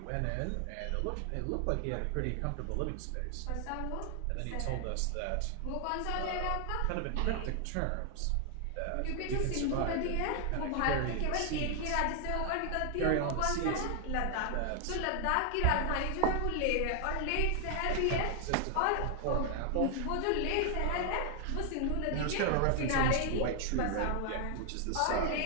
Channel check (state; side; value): different; both; correlation 0.00